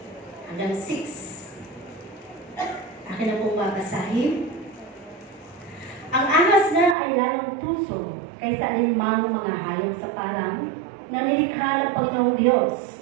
hanggang 6. Akin na pong babasahin. Ang ahas na ay lalong tuso kaysa alinmang mga hayop sa parang na nilikha ng Panginoong Diyos.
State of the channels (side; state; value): left; drops out; at 7.0 s